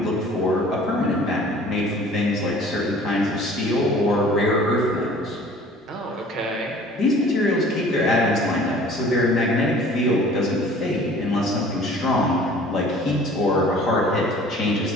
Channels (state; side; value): normal; both; correlation 0.49